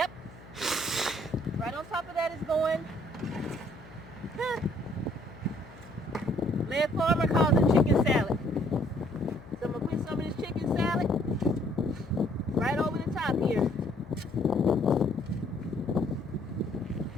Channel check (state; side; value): noise; left; hum, 20 dB below the sound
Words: Right on top of that is going. Lead Farmer calls it chicken salad. So I'm gonna put some of this chicken salad right over the top here.